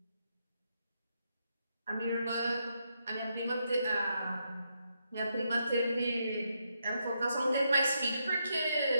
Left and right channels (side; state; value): both; inverted; correlation -0.80